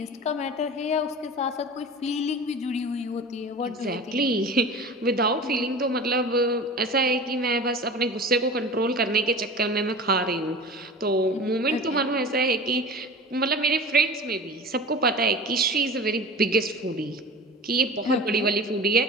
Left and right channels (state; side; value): normal; both; correlation 0.36